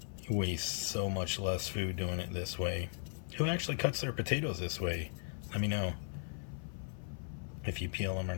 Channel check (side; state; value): right; silent; 53 dB below the other